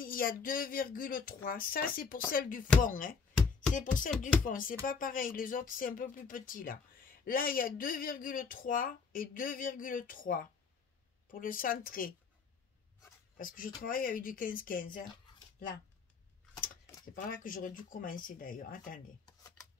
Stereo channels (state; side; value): quieter; right; 5.2 dB